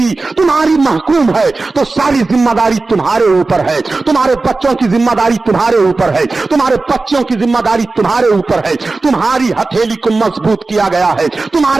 तुम्हारी महकूम है तो सारी जिम्मेदारी तुम्हारे ऊपर है। तुम्हारे बच्चों की जिम्मेदारी तुम्हारे ऊपर है, तुम्हारे बच्चों की जिम्मेदारी तुम्हारे ऊपर है। तुम्हारी हथेली को मजबूत किया गया है,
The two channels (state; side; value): quieter; left; 3.6 dB